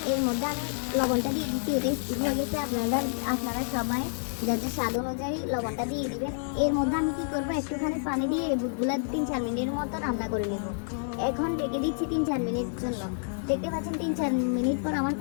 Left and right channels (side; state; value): right; silent; digital silence